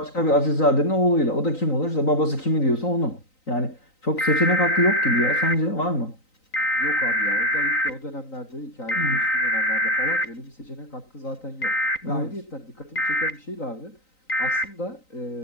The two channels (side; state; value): right; late; 3.9 ms